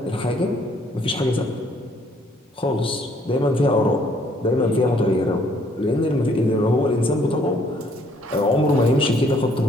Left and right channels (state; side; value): normal; both; correlation 0.64